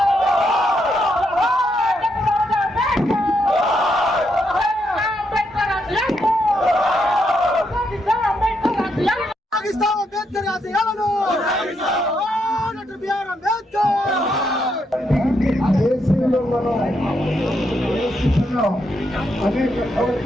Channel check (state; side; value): normal; both; correlation 0.79